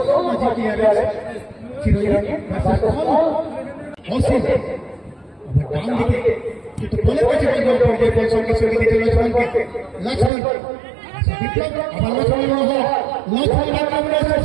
মাঝে কি আর চিরঞ্জিত ভার্সেস অসীম আবার ডান দিকে কিন্তু বলের কাছে বল পড়ে বল সঙ্গে দিতে লক্ষ্মণকে লক্ষ্মণ বিপ্লব আবার লক্ষ্মণ আক্রমণ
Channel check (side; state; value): left; drops out; at 10.3 s